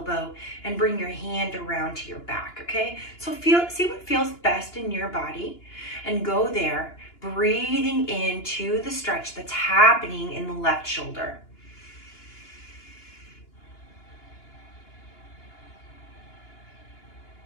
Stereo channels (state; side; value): late; right; 2.9 ms